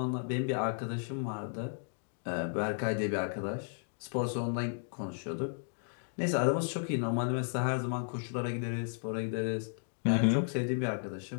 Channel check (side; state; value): right; silent; digital silence